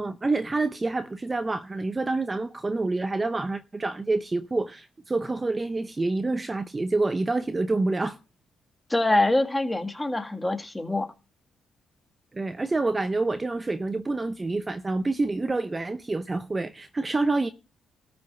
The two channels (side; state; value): both; normal; correlation 0.96